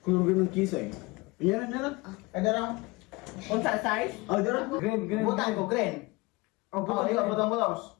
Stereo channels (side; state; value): right; quieter; 24.2 dB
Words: Kulog ng kisa eh. Yan na lang. Ada ra. Unsa size? Oh, dra. Green. Butang ko green. Oh, butang mo daws.